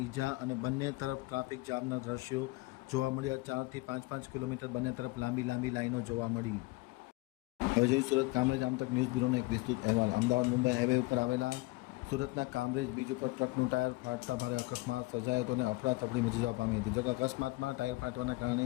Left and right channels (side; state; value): right; quieter; 22.1 dB